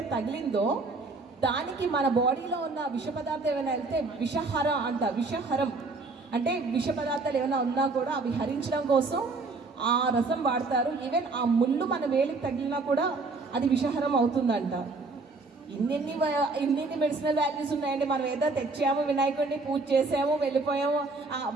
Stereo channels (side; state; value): left; quieter; 3.7 dB